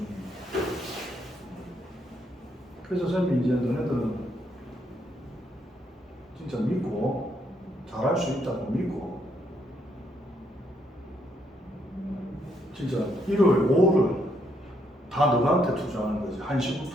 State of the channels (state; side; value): normal; both; correlation 0.74